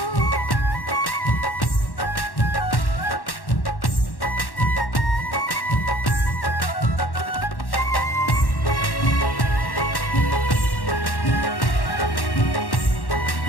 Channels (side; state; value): right; late; 1.1 ms